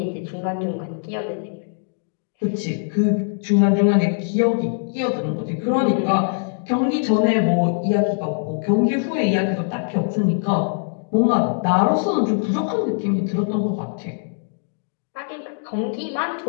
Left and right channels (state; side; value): silent; right; digital silence